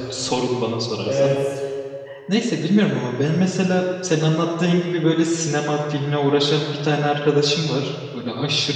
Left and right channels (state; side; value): identical; both; correlation 1.00